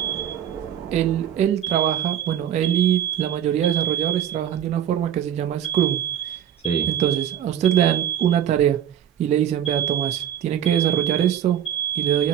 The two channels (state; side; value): quieter; left; 10.1 dB